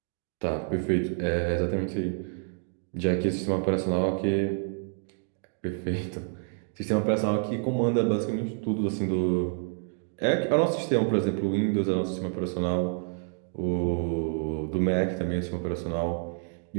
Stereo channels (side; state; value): left; silent; 59 dB below the other